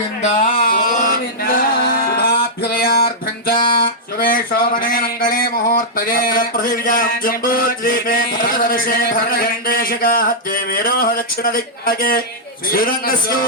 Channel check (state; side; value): normal; both; correlation -0.09